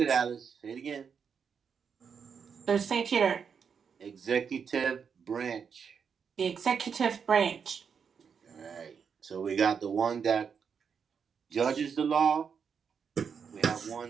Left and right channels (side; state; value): left; quieter; 6.6 dB